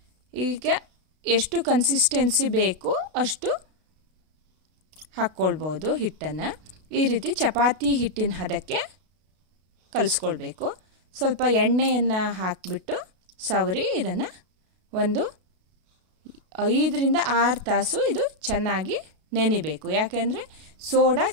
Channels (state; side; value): late; left; 32 ms